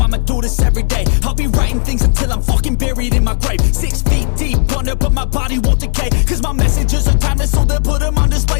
do this every day. I'll be writing things until I'm fucking buried in my grave. 6 feet deep under, but my body won't decay. Cause my messages are timeless, so they'll put them on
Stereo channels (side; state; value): right; silent; 61 dB below the other